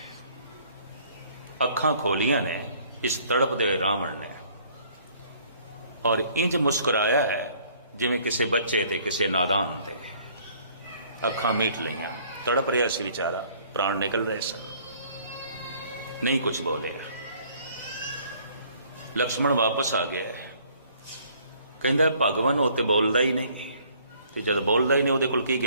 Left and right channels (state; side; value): inverted; both; correlation -0.59